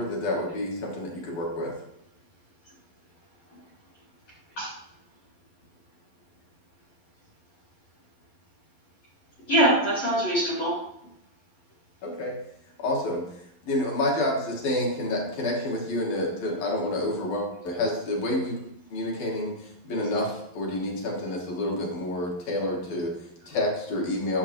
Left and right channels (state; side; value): late; right; 11 ms